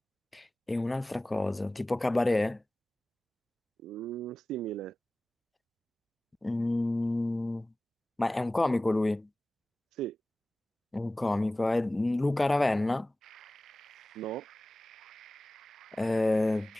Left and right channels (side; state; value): both; normal; correlation 0.97